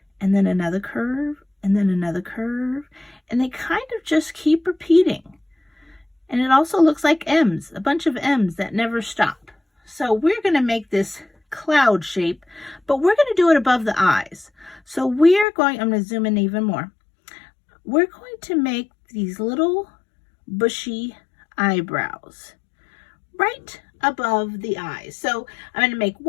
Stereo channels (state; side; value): drops out; right; at 15.5 s